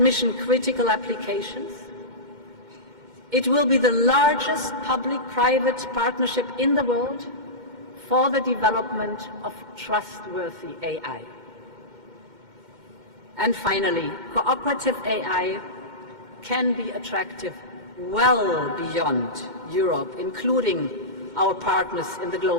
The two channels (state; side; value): late; left; 2.1 ms